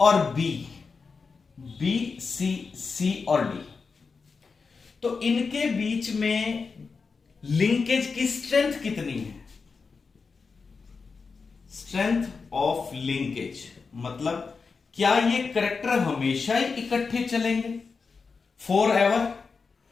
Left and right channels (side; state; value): right; quieter; 4.9 dB